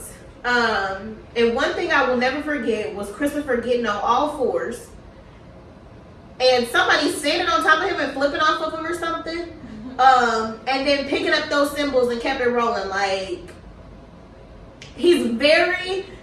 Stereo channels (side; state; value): both; identical; correlation 1.00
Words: And one thing I will never forget was Christopher getting on all fours and somebody standing on top of him and flipping off of him or something. And then picking up those cymbals and kept it rolling. Like, he's very